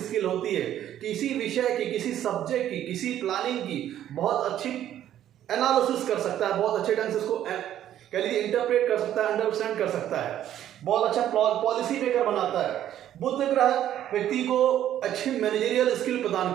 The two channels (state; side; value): quieter; left; 11.5 dB